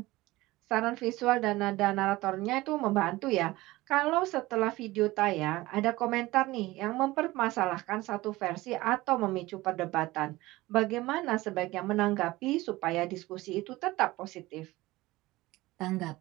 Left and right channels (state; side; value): quieter; left; 19.1 dB